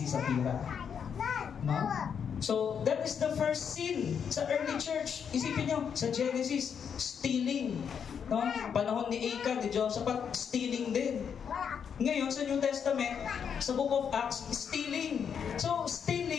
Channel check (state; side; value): quieter; right; 7.3 dB